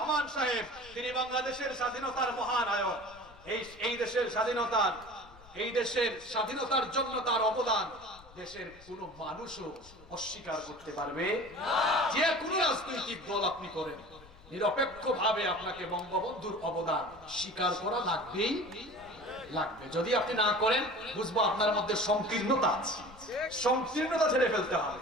সাহেব, তিনি বাংলাদেশের স্বাধীনতার মহানায়ক। এই দেশের স্বাধীনতার জন্য তার অবদান দেশের কোন মানুষও অস্বীকার করতে পারবে না। যে কোনো রাজনৈতিক দল আপনি করেন, নিরপেক্ষভাবে আপনাকে বঙ্গবন্ধুর অবদান স্বীকার করা লাগবেই লাগবে। যদি আপনি না করেন, বুঝবো আপনার মধ্যে সংকীর্ণতা আছে। সংকীর্ণতা ছেড়ে ফেলতে হবে।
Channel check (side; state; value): left; noise; rumble, 22 dB below the sound